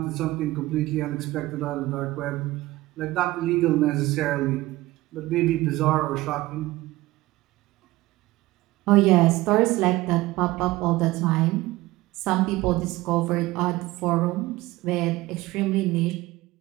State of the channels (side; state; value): left; quieter; 18.6 dB